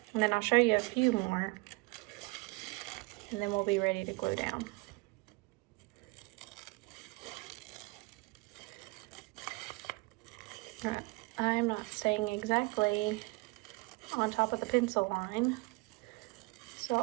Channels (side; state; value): left; quieter; 25.3 dB